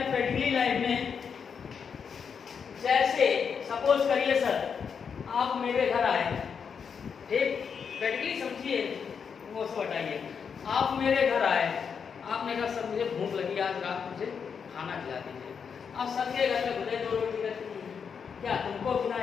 प्रैक्टिकली लाइफ में, जैसे सपोज करिए सर आप मेरे घर आए, ठीक, प्रैक्टिकली समझिए, वो सब हटाइए, आप मेरे घर आए, आपने कहा सर मुझे भूख लगी, आज रात मुझे खाना खिला दीजिए। आप सबके घर में भले 2 रोटी रहती है, क्या तुमको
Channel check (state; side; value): quieter; right; 6.5 dB